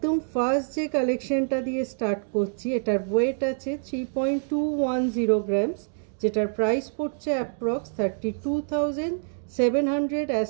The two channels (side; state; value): left; silent; digital silence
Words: फार्स्ट जे कालेक्शनटा दिए स्टार्ट करছি এটার ওয়েট আছে 3.210 গ্রামস, যেটার প্রাইস পড়ছে approx 32,700 as